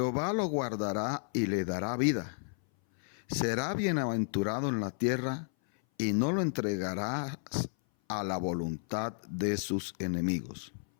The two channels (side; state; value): right; silent; 56 dB below the other